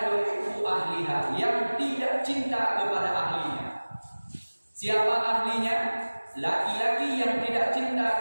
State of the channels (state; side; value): inverted; both; correlation -1.00